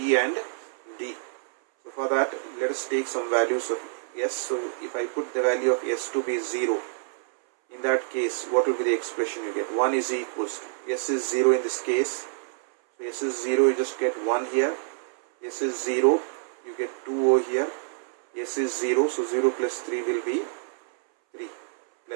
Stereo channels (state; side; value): silent; left; 60 dB below the other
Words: and d. So for that, let us take some values of s. So if I put the value of s to be 0, in that case, what will be the expression you get? 1 is equals to, s is 0 in this case. So s is 0, you just get 1 here. S is 0, you get 2 over here. S is 0, so 0 plus 3 will be 3.